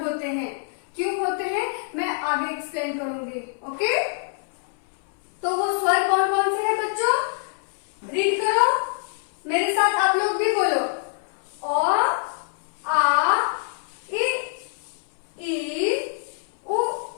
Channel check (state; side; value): silent; right; 61 dB below the other